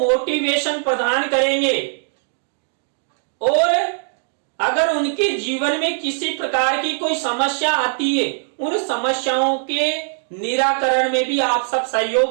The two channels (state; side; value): silent; left; digital silence